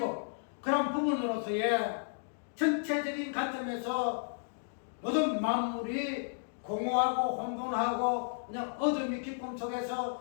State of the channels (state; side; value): silent; right; digital silence